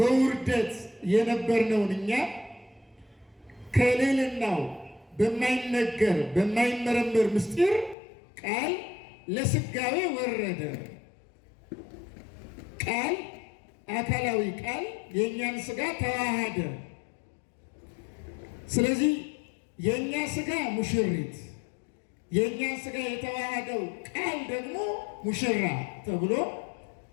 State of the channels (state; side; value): drops out; right; at 8.0 s